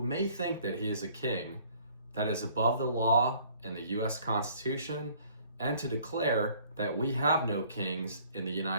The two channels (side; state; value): both; inverted; correlation -0.57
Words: may think that he is a king that is above the law and the U.S. Constitution, and to declare that we have no kings in the